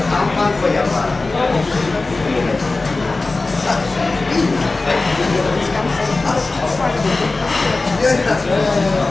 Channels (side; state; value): right; quieter; 3.4 dB